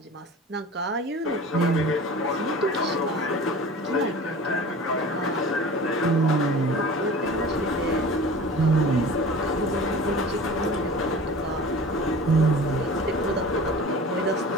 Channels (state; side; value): normal; both; correlation 0.39